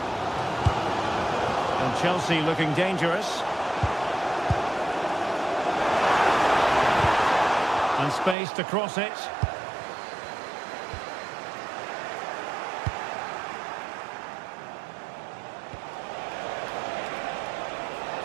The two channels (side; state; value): left; drops out; at 8.3 s